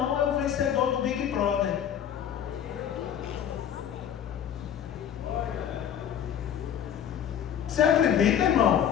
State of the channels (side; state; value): right; quieter; 9.3 dB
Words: é o vencedor do Big Brother. Você acredita,